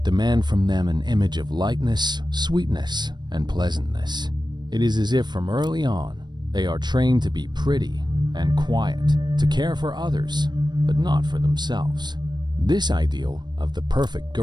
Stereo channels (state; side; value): late; left; 0.21 ms